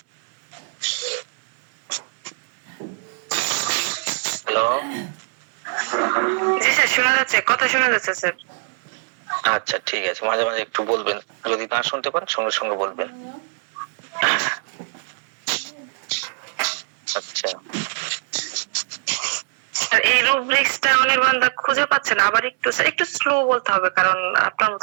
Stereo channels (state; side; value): silent; left; digital silence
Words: হ্যালো, জি স্যার শোনা যাচ্ছে, কথা শোনা যাচ্ছে স্যার। আচ্ছা ঠিক আছে, মাঝে মাঝে একটু বলবেন, যদি না শুনতে পান সঙ্গে সঙ্গে বলবেন। আচ্ছা, আর এই রুব্রিক্সটা অনির্বাণদা খুঁজে পাচ্ছে না, আবার একটু স্লো বলতে হবে, কারণ আপনার